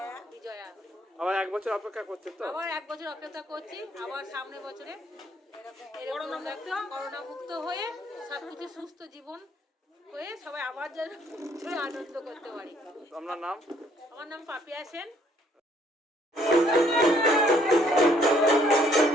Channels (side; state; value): both; normal; correlation 0.64